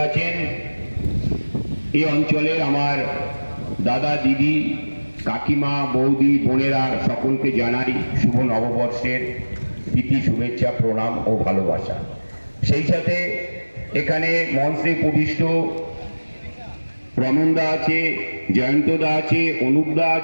আছেন, এই অঞ্চলের আমার দাদা, দিদি, কাকিমা, বৌদি, বোনেরা সকলকে জানাই শুভ নববর্ষের প্রীতি, শুভেচ্ছা, প্রণাম ও ভালোবাসা। সেই সাথে এখানে মঞ্চে উপবিষ্ট রমনদা আছে, জয়ন্তদা আছে, অনুপদা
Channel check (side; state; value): both; inverted; correlation -1.00